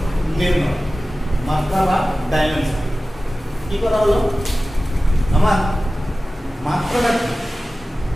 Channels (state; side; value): normal; both; correlation 0.96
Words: নির্ণয়, মাত্রা বা ডাইমেনশন। কি করা হলো, আমার মাত্রাটা